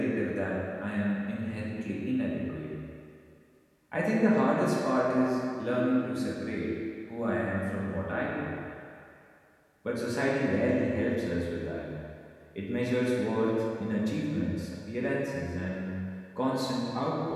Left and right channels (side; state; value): both; identical; correlation 1.00